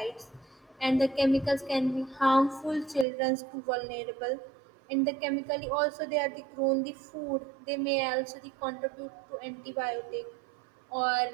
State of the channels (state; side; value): drops out; left; at 3.1 s